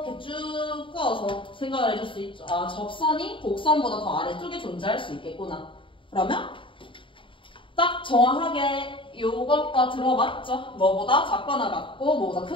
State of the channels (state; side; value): late; right; 0.25 ms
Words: 쭉 꺼서 생각을 해줄 수 있죠. 아, 접선이 곡선보다 더 아래쪽에 존재할 수 있겠구나. 그러면 딱 정확하게 요것과 들어맞죠? 뭐보다 작거나 같고 뭐보다